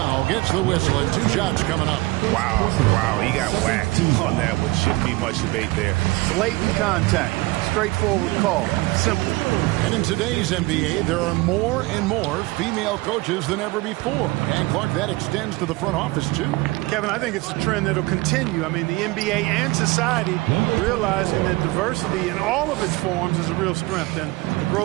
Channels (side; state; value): left; quieter; 21.8 dB